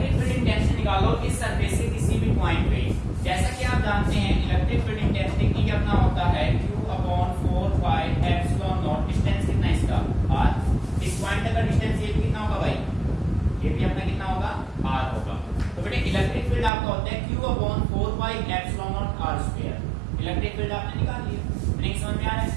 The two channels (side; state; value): left; drops out; at 16.7 s